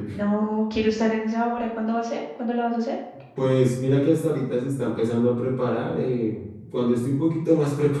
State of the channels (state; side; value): identical; both; correlation 1.00